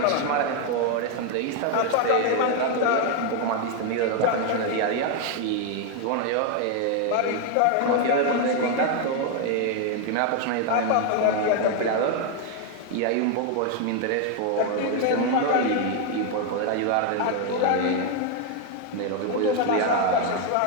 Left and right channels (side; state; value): both; different; correlation 0.01